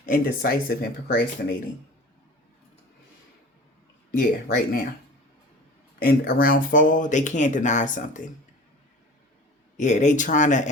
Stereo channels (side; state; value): both; normal; correlation 0.39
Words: indecisive and procrastinating. Yeah, right now. And around fall, they can't deny something. Yeah, they trying to